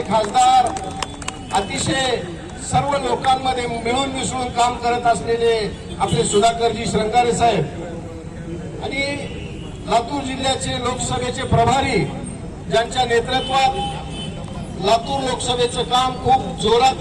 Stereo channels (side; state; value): both; identical; correlation 1.00